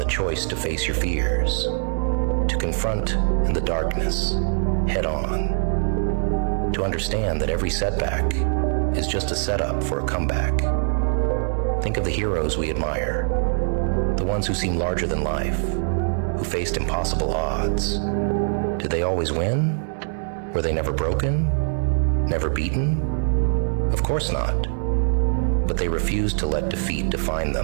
choice to face your fears, to confront in the darkness, head on, to understand that every setback is just a setup for a comeback. Think of the heroes we admire, the ones who seem larger than life, who faced impossible odds. Did they always win? Were they never broken? Never beaten? Of course not. But they refused to let defeat define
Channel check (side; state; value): left; silent; digital silence